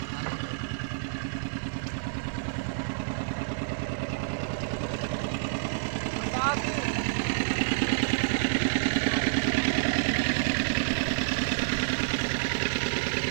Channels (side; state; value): left; silent; digital silence